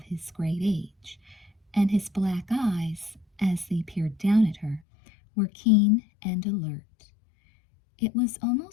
his great age, and his black eyes, as they peered down at her, were keen and alert. It was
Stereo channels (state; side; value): drops out; right; at 4.8 s